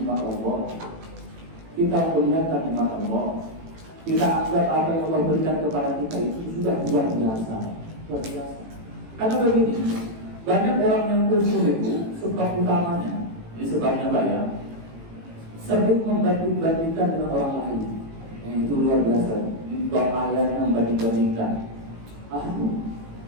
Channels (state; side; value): late; left; 18 ms